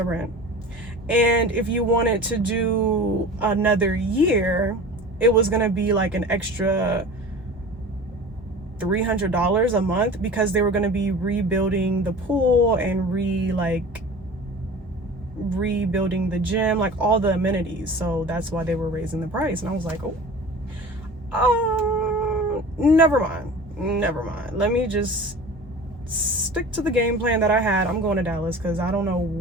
rent. And if you wanted to do another year, it was going to be like an extra $300 a month, because they were going to be rebuilding the pool and rebuilding the gym, like all the amenities. So that's why they were raising the price. And I was like, never mind. Let me just stick to the game plan that I had. I'm going to Dallas because I don't know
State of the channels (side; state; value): both; normal; correlation 0.38